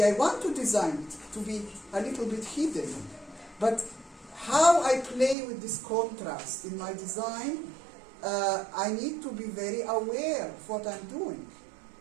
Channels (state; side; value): drops out; left; at 5.4 s